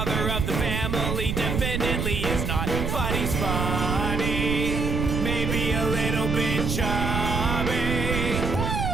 of the family definitely is not. But he's funny, maybe a little bit chubby.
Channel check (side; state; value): right; noise; rumble, 1 dB below the sound